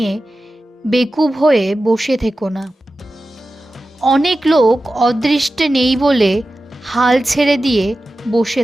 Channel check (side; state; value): both; normal; correlation 0.94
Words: বেকুব হয়ে বসে থেকো না। অনেক লোক অদৃষ্টে নেই বলে হাল ছেড়ে দিয়ে বসে